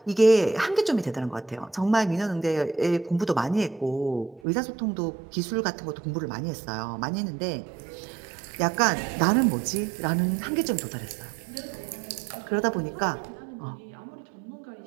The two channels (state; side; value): drops out; left; at 4.4 s